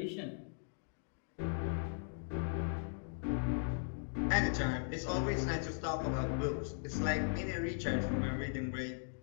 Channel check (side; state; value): right; silent; digital silence